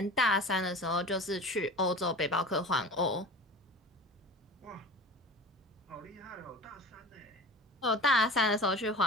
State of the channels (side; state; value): both; normal; correlation 0.36